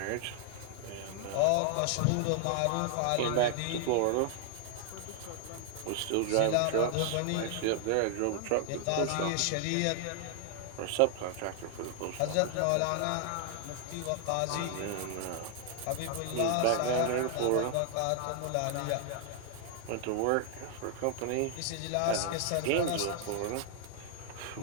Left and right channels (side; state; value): both; different; correlation 0.00